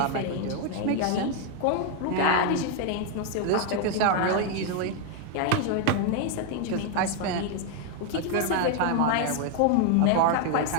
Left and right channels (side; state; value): both; different; correlation 0.01